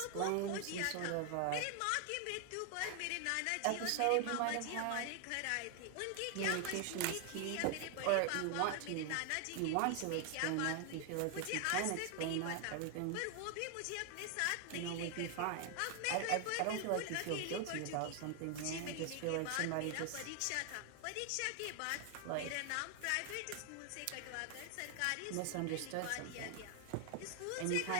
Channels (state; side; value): different; both; correlation 0.00